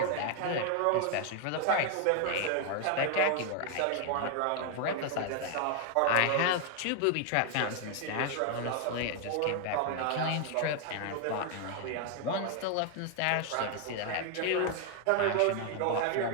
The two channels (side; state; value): both; different; correlation 0.00